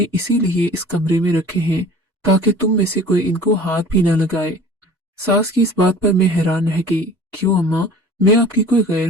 इसीलिए इस कमरे में रखे हैं ताकि तुम में से कोई इनको हाथ भी ना लगाए। सास की इस बात पर मैं हैरान रह गई। क्यों अम्मा, मैं आपकी कोई गैर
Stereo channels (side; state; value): both; normal; correlation 0.44